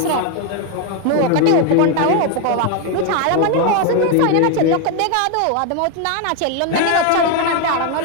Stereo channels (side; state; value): both; different; correlation 0.01